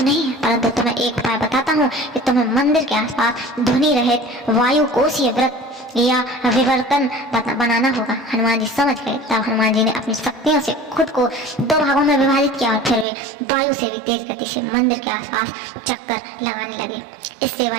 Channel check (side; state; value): left; drops out; at 13.1 s